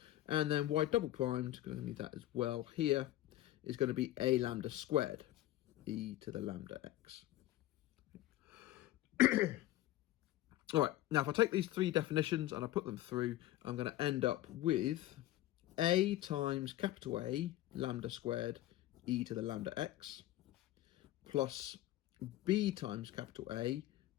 And then y double primed, going to need that as well here, is going to be a lambda squared e to the lambda x. All right, now if I take these three definitions and I put them through, I'm going to end up with a times capital A lambda squared e to the lambda x plus b times capital A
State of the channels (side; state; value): right; quieter; 15.2 dB